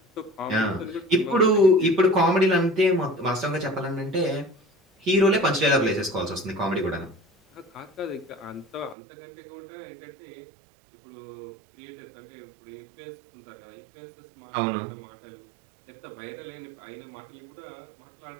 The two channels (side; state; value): left; drops out; at 9.0 s